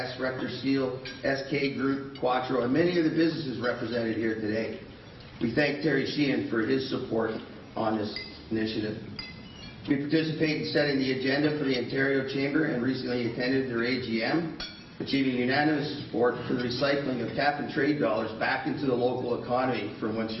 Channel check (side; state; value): both; identical; correlation 1.00